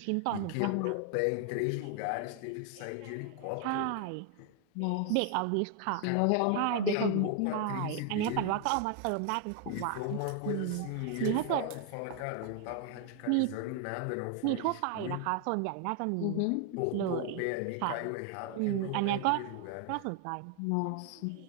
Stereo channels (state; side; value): different; both; correlation 0.00